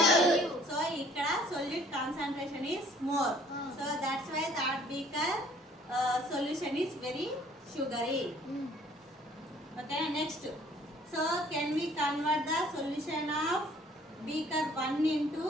సో ఇక్కడ solute concentration is more. So that's why that beaker solution is very sugary. Okay, next, so can we convert the solution of beaker 1 into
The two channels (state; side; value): normal; both; correlation 0.57